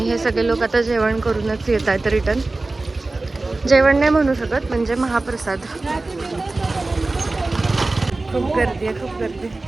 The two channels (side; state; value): left; quieter; 3.2 dB